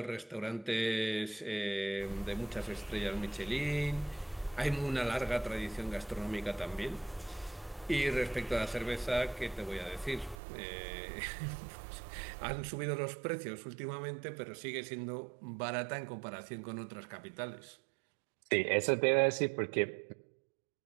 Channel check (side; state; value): left; drops out; at 10.4 s